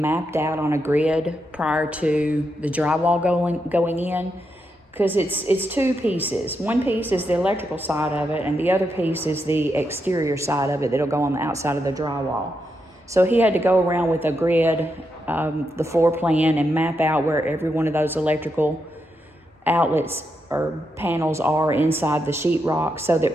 out on a grid prior to the drywall going in, because it's two pieces. One piece is the electrical side of it, and the other piece is the exterior side of it that'll go on the outside of the drywall. So he had to go around with a grid, the floor plan, and map out where every one of those electrical outlets or panels are inside the sheetrock, so that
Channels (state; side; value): normal; both; correlation 0.83